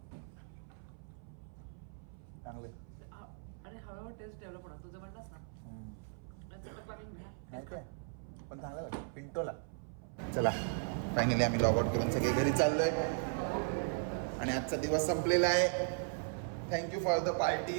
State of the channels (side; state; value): left; silent; 53 dB below the other